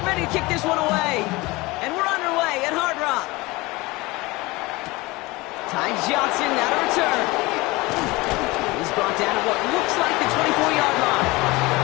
ready to kick this one away. And we're underway at Hard Rock. Ty Johnson now to return. He's brought down at what looks like the 24-yard line.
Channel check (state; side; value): quieter; right; 22.3 dB